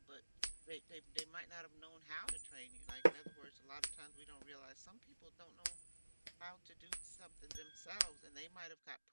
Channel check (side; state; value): both; inverted; correlation -1.00